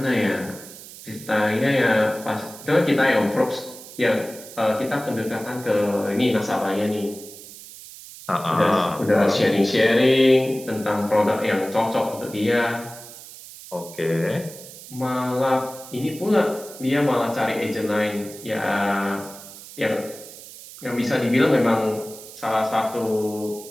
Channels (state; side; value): noise; right; hiss, 16 dB below the sound